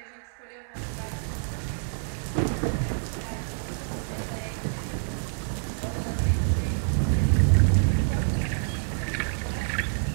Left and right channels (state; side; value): silent; left; 60 dB below the other